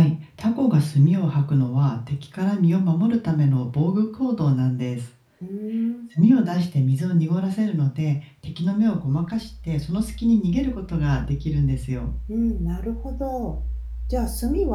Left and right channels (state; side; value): identical; both; correlation 1.00